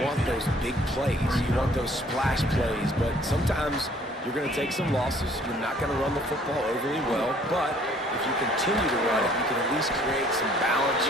want those big plays. You want those splash plays, but sometimes you're going to take some losses. You're not going to run the football overly well, but if you continue to run it, you can at least create some balance.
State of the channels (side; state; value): both; normal; correlation 0.58